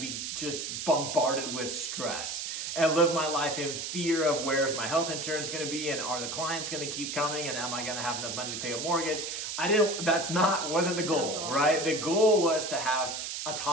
be just bombarded with stress and live my life in fear of where's my health insurance going to be, and are the clients going to keep coming, and am I going to have enough money to pay a mortgage? Wasn't the goal, right? The goal was to have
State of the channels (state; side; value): noise; right; hiss, 5 dB below the sound